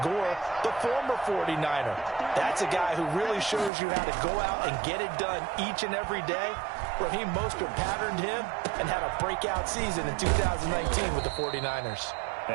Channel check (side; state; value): left; drops out; at 3.7 s